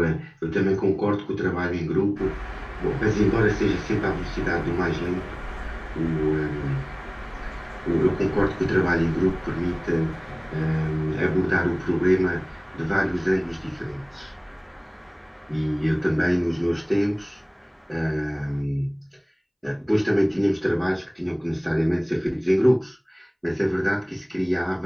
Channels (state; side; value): identical; both; correlation 1.00